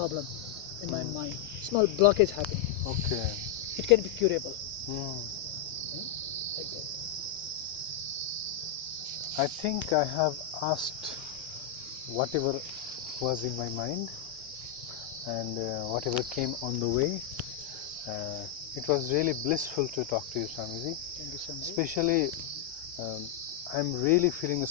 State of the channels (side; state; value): right; quieter; 9.5 dB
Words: in my mind, small blockage happening. Okay. It can be curable. Like that. I think I have asked whatever was in my mind and whatever came on the way. It was really blissful to talk to you, Swamiji. Thank you so much. Especially, I'm really feeling a